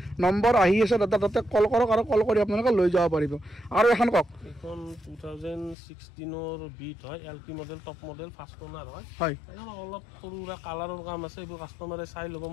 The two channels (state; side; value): drops out; right; at 5.8 s